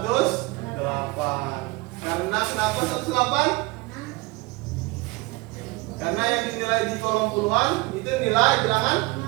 Karena kenapa 108? Karena yang dinilai di kolom puluhan itu nilai bilangan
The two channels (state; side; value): quieter; left; 23.7 dB